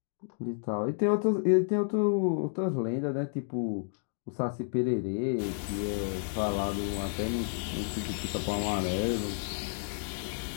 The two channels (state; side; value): silent; right; digital silence